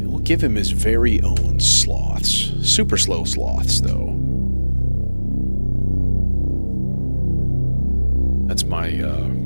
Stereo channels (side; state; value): both; inverted; correlation -1.00